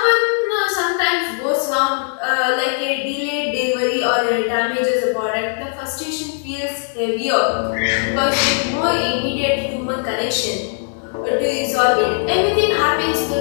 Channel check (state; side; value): silent; right; 64 dB below the other